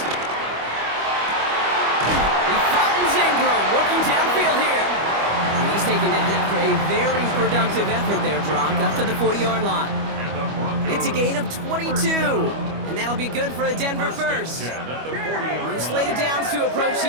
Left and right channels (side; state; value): left; late; 25 ms